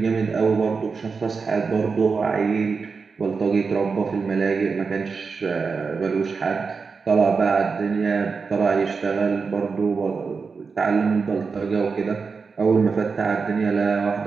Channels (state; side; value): quieter; left; 5.0 dB